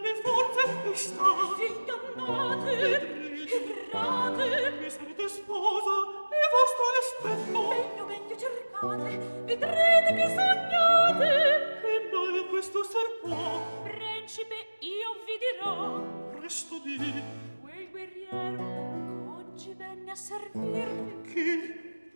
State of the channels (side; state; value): both; inverted; correlation -1.00